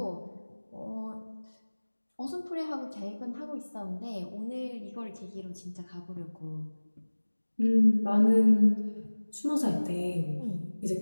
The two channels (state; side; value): inverted; both; correlation -1.00